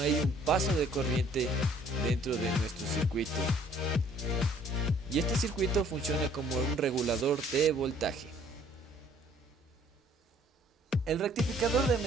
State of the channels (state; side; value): normal; both; correlation 0.58